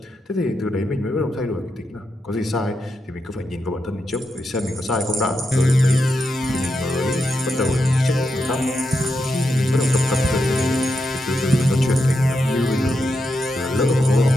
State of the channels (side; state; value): both; normal; correlation 0.85